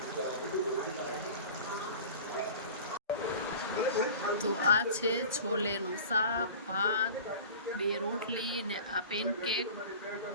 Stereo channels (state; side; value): inverted; both; correlation -0.39